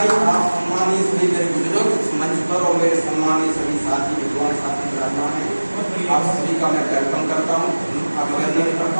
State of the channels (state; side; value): inverted; both; correlation -1.00